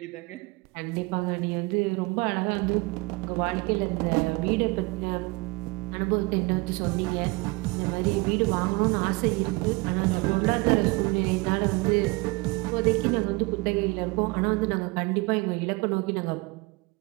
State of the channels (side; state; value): left; quieter; 25.7 dB